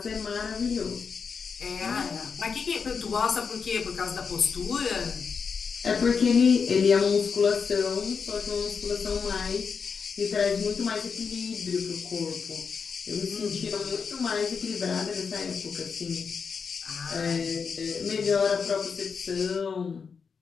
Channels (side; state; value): right; quieter; 5.8 dB